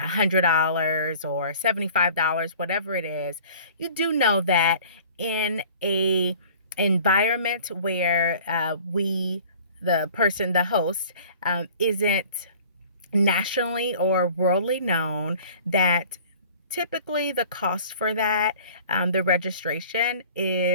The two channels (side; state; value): both; inverted; correlation -0.47